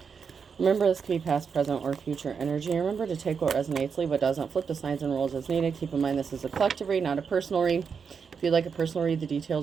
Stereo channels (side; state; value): left; quieter; 6.1 dB